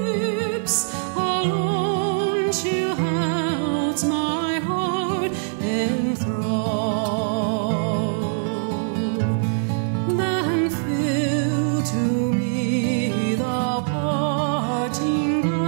alone she holds my heart in thrall. Then fill to me the parting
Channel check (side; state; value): left; silent; 64 dB below the other